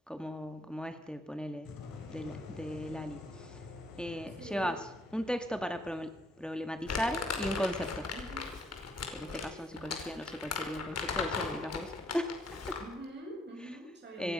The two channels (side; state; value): both; normal; correlation 0.70